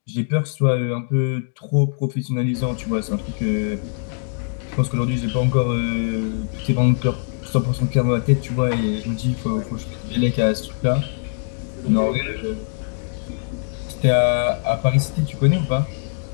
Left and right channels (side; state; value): right; silent; 64 dB below the other